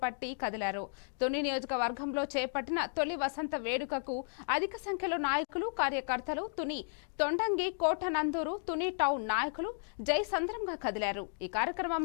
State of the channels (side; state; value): right; silent; digital silence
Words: పట్టి కదిలారు. తుని నియోజకవర్గంలో చేపట్టిన తొలి వసంత వేడుకకు అధిక సంఖ్యలో నాయకులు, కార్యకర్తలు, తుని తొండంగి, కోటనందూరు, తుని టౌన్ నాయకులు జై సంద్రంగా కదిలారు. ఈ